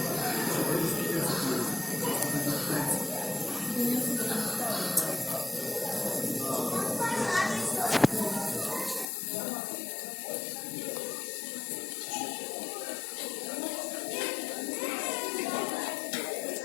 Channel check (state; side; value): drops out; right; at 9.1 s